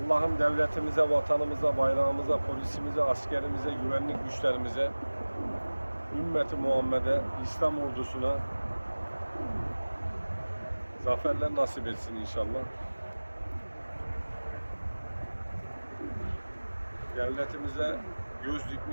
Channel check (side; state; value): both; inverted; correlation -1.00